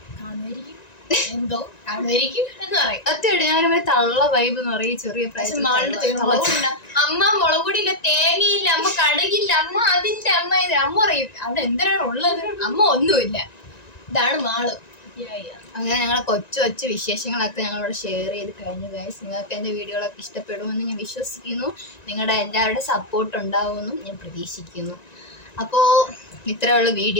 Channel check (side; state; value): right; late; 1.9 ms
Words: കാണുമായിരിക്കും എന്തോ കാണുമായിരിക്കും എന്ന് പറയും. സത്യമായിട്ട് ഞാനമ്മ തള്ള വൈബ് എന്ന് പറയും. ചെറിയ അമ്മ മുളക് പൊടിയില്ല, തേങ്ങയില്ല, അമ്മ കടകില്ല, അമ്മ അതിന്റെ അമ്മ ഇത് അമ്മ പറയും അവിടെ എന്തിനാണ് ഉള്ളത്, അമ്മ ഒന്നുമില്ല. ഇതാണ് മാള്. അങ്ങനെ ഞങ്ങളെ കൊച്ചു വിശേഷങ്ങളൊക്കെ ഞങ്ങളിവിടെ ഷെയർ ചെയ്ത് കഴിഞ്ഞു ഗൈസ്. നിങ്ങൾക്ക് എൻ്റെ വീഡിയോകളൊക്കെ ഇഷ്ടപ്പെടുമെന്ന് ഞാൻ വിശ്വസിക്കുന്നു. നിങ്ങളുടെ എല്ലാവരുടെ സപ്പോർട്ട് ഉണ്ടാവുമെന്നും ഞാൻ പ്രതീക്ഷിക്കുന്നു. അപ്പോൾ ഇത്രയുള്ള